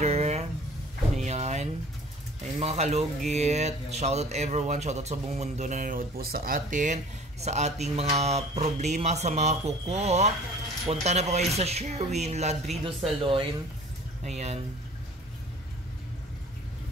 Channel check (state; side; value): normal; both; correlation 0.47